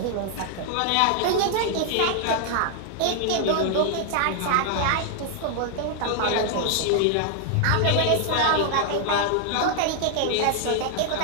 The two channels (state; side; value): different; both; correlation 0.00